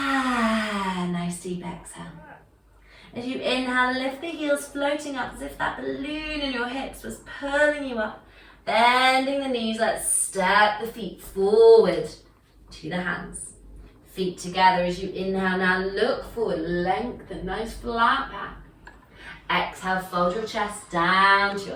deep exhale. As you inhale, lift the heels floating up as if that balloon in your hips was pulling you up. Bending the knees, let's step the feet forward to the hands. Feet together as you inhale. Now look forward, lengthen, nice flat back. Exhale, fold your chest down to your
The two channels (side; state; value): both; identical; correlation 1.00